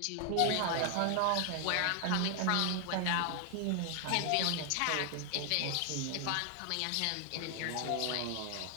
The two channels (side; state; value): both; different; correlation 0.00